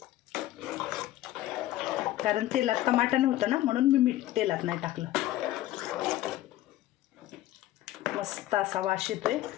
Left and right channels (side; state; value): right; quieter; 14.7 dB